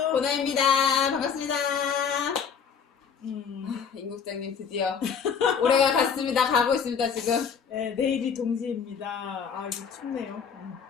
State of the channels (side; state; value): right; quieter; 6.7 dB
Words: 보나입니다. 반갑습니다. 임 국장님 드디어 올해가 갔습니다. 가고 있습니다 지금. 네, 내일이 동지입니다. 아 이거 춥네요.